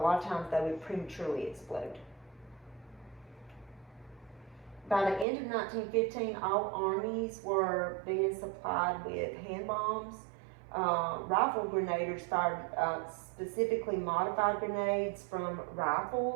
lot of times they would prematurely explode. By the end of 1915, all armies were being supplied with hand bombs. Rifle grenadiers fired specifically modified grenades from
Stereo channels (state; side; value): drops out; left; at 5.2 s